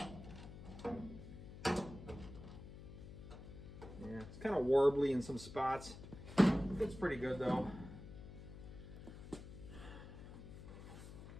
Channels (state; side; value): noise; left; hum, 13 dB below the sound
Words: it's kind of warbly in some spots. It's pretty good though.